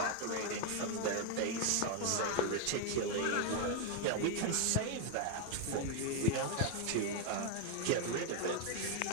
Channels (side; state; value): both; different; correlation 0.00